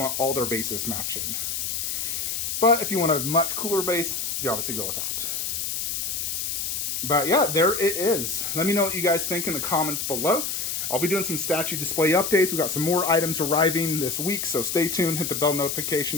all their bases matching. But if you want a much cooler base, you obviously go with that. But yeah, there it is. Let me know what you guys think in the comments below. I'll be doing some statue display updates. We've got some more items arriving this week, so stay tuned, hit the bell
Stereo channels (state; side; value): noise; left; hiss, 2 dB below the sound